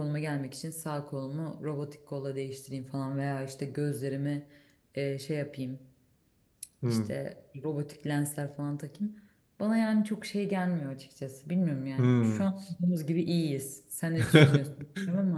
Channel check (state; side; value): identical; both; correlation 1.00